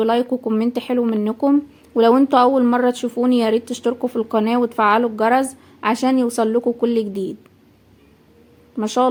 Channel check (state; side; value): identical; both; correlation 1.00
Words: وكومنت حلو منكم. ولو انتوا اول مرة تشوفوني ياريت تشتركوا في القناة وتفعلوا الجرس عشان يوصلكوا كل جديد. ما شاء